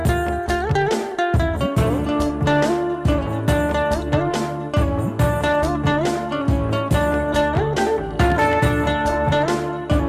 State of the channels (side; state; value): both; identical; correlation 1.00